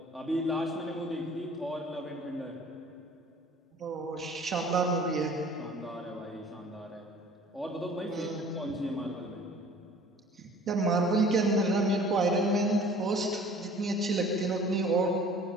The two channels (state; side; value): normal; both; correlation 0.49